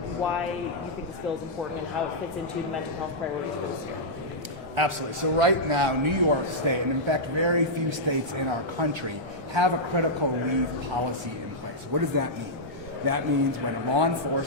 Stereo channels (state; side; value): normal; both; correlation -0.09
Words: why you think this bill is important and how it fits into the mental health priorities for this year? Absolutely. So right now, New York State, and in fact very few states in our country, have a critical leave policy in place. What does that mean? That means when a law